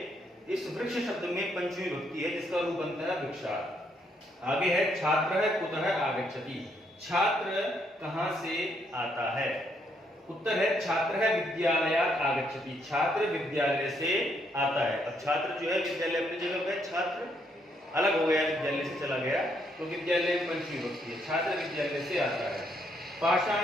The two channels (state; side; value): normal; both; correlation 0.73